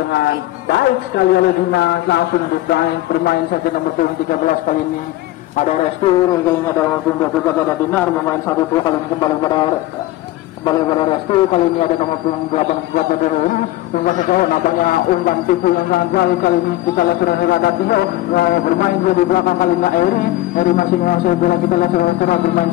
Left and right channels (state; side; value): quieter; right; 16.0 dB